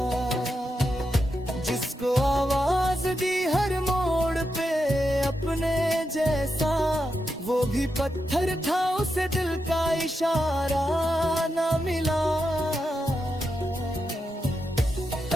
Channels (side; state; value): both; normal; correlation 0.86